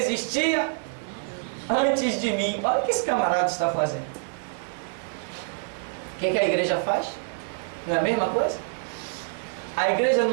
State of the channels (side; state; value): left; silent; 61 dB below the other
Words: antes de mim. Olha o que esse camarada está fazendo. O que a igreja faz? Não é a mesma coisa? A igreja